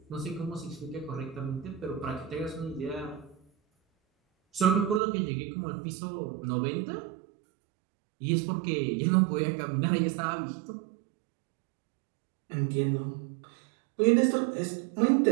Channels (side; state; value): left; drops out; at 5.0 s